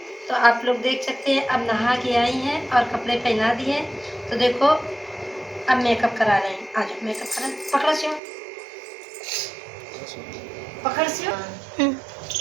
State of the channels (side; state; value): left; drops out; at 8.2 s